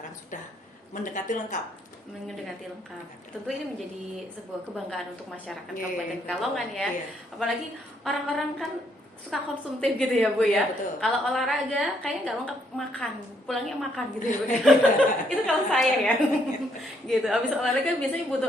sudah mendekati lengkap. Tentu ini menjadi sebuah kebanggaan untuk masyarakat Yeah, Kabupaten Pekalongan ya. Yeah. Apalagi orang-orang kan suka konsumtif gitu ya Bu ya. Betul. Kalau olahraga kayaknya nggak lengkap, makan, pulangnya makan gitu ya Bu. Itu kalau saya ya. Gitu. Habis olahraga biasanya butuh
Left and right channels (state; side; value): normal; both; correlation 0.71